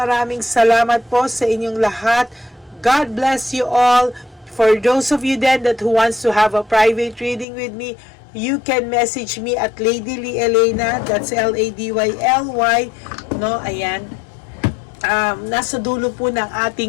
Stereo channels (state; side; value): drops out; right; at 7.5 s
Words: salamat po sa inyong lahat. God bless you all. For those of you then that who wants to have a private reading with me, you can message me at Lady Lee Elena. That's LADYLY. No, ayan. Nasa dulo po ng